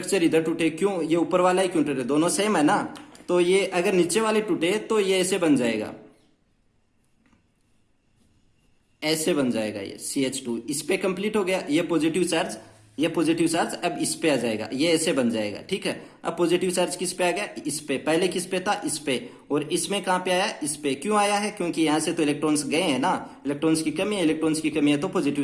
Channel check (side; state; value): both; identical; correlation 1.00